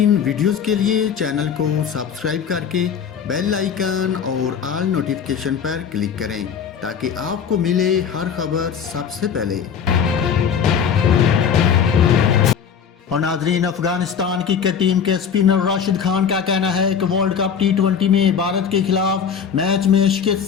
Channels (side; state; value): right; quieter; 7.3 dB